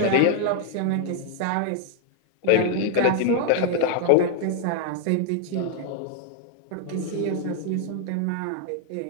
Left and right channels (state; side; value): different; both; correlation 0.00